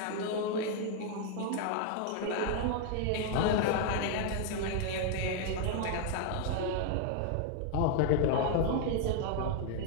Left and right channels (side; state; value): both; different; correlation 0.00